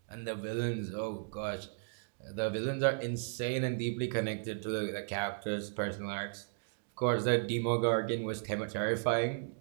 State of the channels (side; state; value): left; silent; digital silence